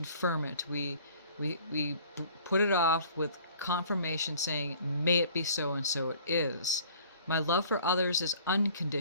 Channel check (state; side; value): inverted; both; correlation -0.52